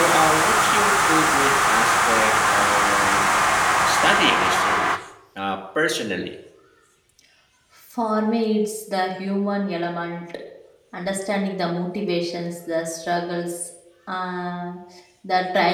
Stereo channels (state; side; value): identical; both; correlation 1.00